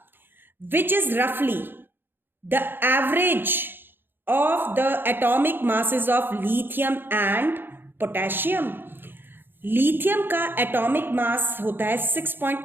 विच इज रफली the average of the atomic masses of lithium and potassium. Lithium का एटॉमिक मास होता है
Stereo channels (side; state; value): left; late; 0.10 ms